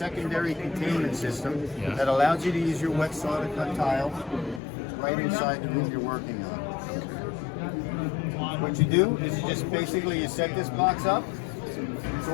containment system Yeah. that allows you to use your wet saw to cut tile right inside the room you're working on. What you do is you just basically you set this box up. It's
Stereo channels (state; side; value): drops out; right; at 4.6 s